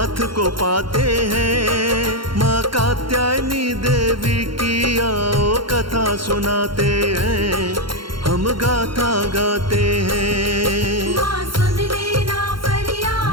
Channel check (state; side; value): late; left; 0.73 ms